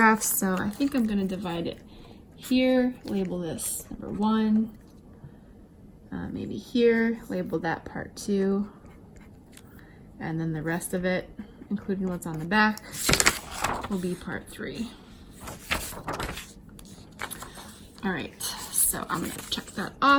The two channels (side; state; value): both; identical; correlation 1.00